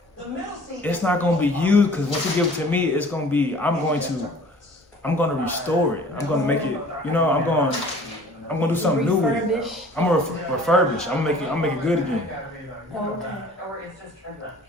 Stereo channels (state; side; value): normal; both; correlation 0.49